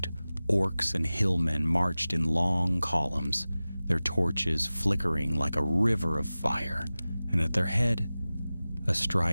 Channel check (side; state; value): both; inverted; correlation -0.97